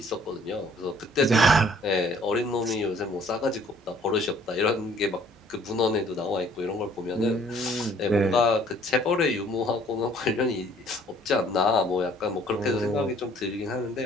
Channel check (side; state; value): both; normal; correlation 0.58